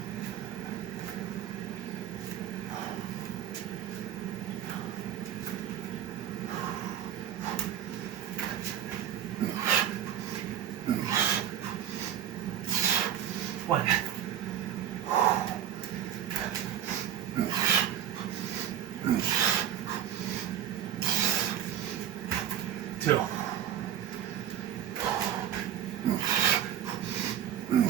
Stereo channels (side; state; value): left; quieter; 10.3 dB